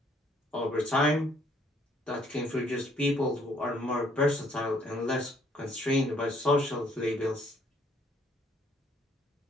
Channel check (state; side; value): normal; both; correlation 0.64